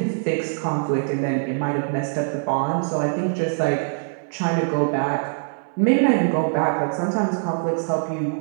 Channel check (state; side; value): silent; left; 59 dB below the other